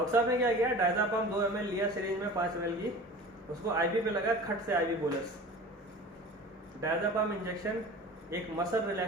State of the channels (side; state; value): both; normal; correlation 0.38